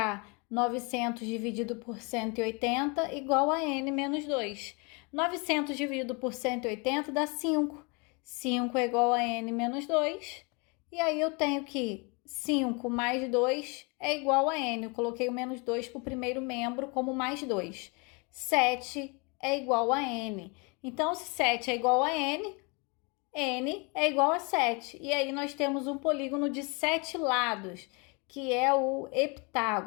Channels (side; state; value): right; quieter; 30.9 dB